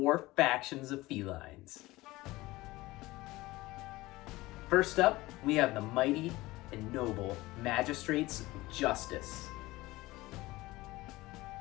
factions of felines. First up, we have the mighty and noble magistrates of justice.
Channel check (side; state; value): right; quieter; 19.4 dB